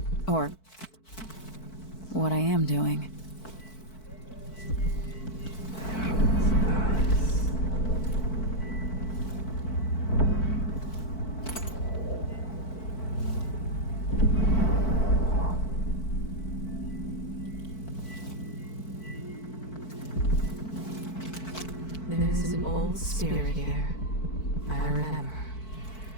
Or what I am doing. There's an old spirit here. I remember.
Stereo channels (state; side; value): late; right; 4.5 ms